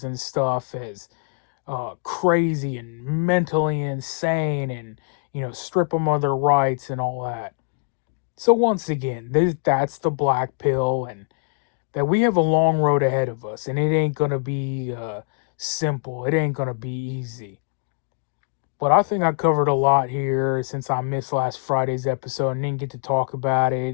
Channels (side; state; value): right; silent; digital silence